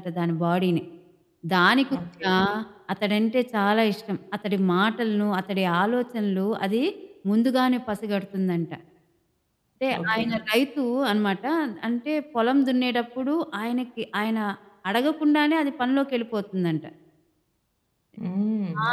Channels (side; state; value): both; identical; correlation 1.00